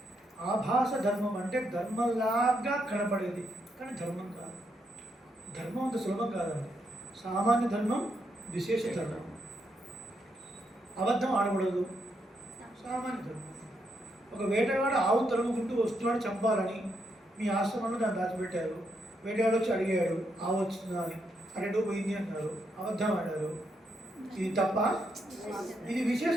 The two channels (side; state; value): both; normal; correlation 0.79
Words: ఆభాస ధర్మం అంటే ధర్మంలాగా కనపడేది కానీ ధర్మం కాదు. ధర్మం అంత సులభం కాదండి. సామాన్య ధర్మం, విశేష ధర్మం. అబద్ధం ఆడకూడదు, సామాన్య ధర్మం. ఒక వేటగాడు ఆవు తరుముకుంటూ వస్తున్నాడు చంపాలని, మీ ఆశ్రమంలో దాన్ని దాచిపెట్టారు. వేటగాడు వచ్చి అడిగాడు ఆవు వచ్చిందా అని, అరెండో పోయింది అన్నారు, అబద్ధం ఆడారు. ఇది తప్ప? ఇది విశేష